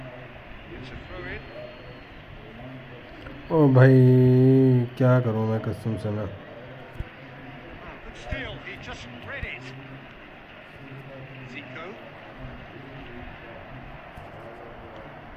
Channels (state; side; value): identical; both; correlation 1.00